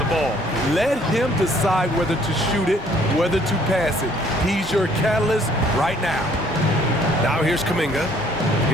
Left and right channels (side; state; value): both; normal; correlation 0.61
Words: ball. Let him decide whether to shoot it, whether to pass it. He's your catalyst right now. Now here's Kuminga.